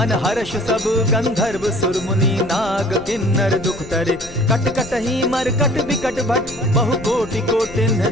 हर्ष सब गंधर्व सुर मुनि नाग किन्नर दुख तरे। कट कटहि मरकट बिकट भट बहु कोटि कोटिन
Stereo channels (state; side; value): noise; left; rumble, 17 dB below the sound